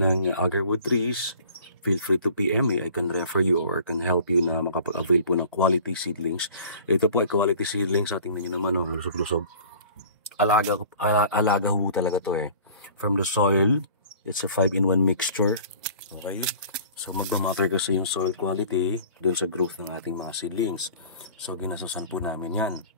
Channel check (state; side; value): inverted; both; correlation -0.46